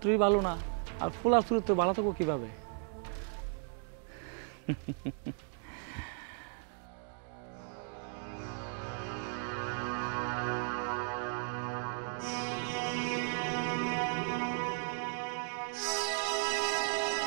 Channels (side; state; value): left; silent; 54 dB below the other